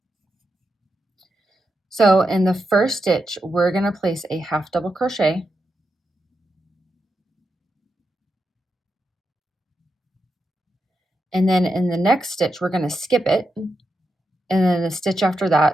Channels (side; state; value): both; normal; correlation 0.86